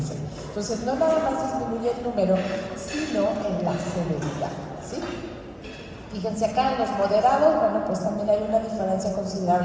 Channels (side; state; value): both; identical; correlation 1.00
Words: Entonces, no nada más disminuye el número, sino en la severidad, ¿sí? Fíjense acá en los moderados, bueno, pues también hay una diferencia